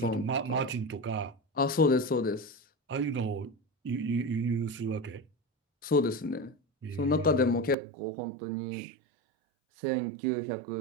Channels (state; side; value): drops out; left; at 7.8 s